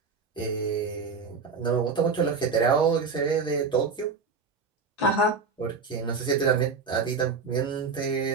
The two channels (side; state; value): left; quieter; 4.8 dB